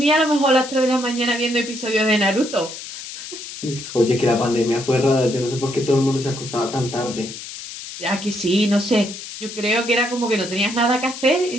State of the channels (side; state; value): left; noise; hiss, 11 dB below the sound